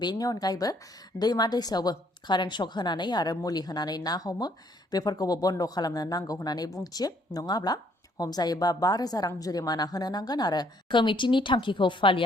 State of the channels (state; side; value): normal; both; correlation 0.66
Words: बेनि अनगायैबो दैमा दैसायावबो कारेन्ट शक होनानै आरो मुलि होनानै ना हमो बेफोरखौबो बन्द खालामनो नांगौ होननानै बुंथियो नङाब्ला हमजायोबा 5,000 रां जुरिमाना होनो नांगोन आरो कमिटिनि थांखिखौ